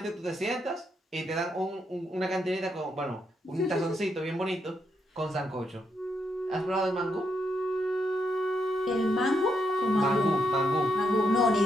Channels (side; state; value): both; normal; correlation 0.79